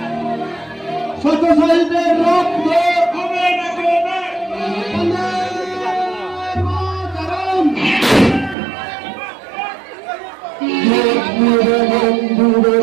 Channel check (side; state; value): left; drops out; at 8.6 s